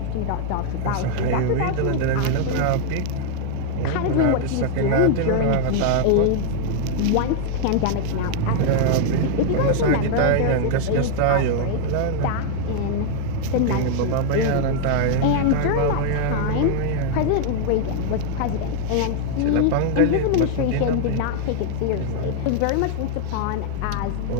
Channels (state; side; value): different; both; correlation -0.01